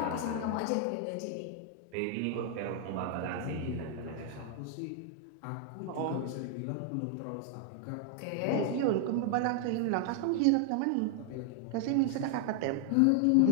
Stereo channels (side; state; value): both; different; correlation 0.00